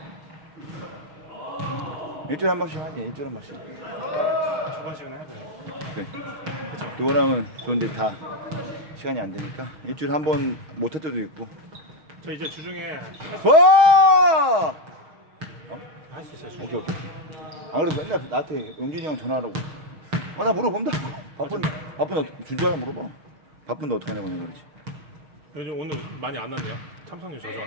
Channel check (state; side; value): late; left; 6.4 ms